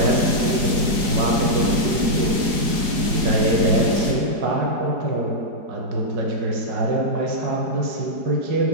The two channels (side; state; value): left; late; 4.8 ms